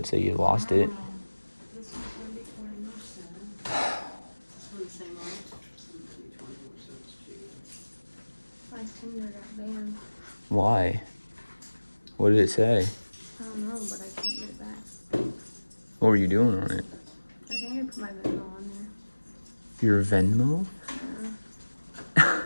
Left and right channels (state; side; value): inverted; both; correlation -1.00